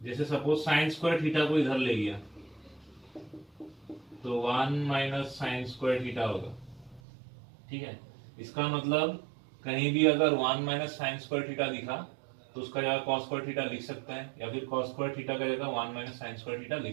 जैसे सपोज साइन स्क्वायर थीटा को इधर ले गया तो 1 माइनस साइन स्क्वायर थीटा होगा, ठीक है। इसका मतलब कहीं भी अगर 1 माइनस साइन स्क्वायर थीटा दिखा तो उसका जगह कॉस स्क्वायर थीटा लिख सकते हैं, या फिर कॉस स्क्वायर थीटा का जगह 1 माइनस साइन स्क्वायर थीटा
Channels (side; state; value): left; drops out; at 7.0 s